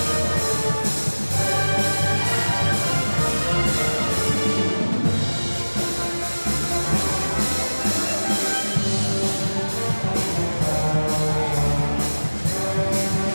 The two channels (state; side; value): inverted; both; correlation -1.00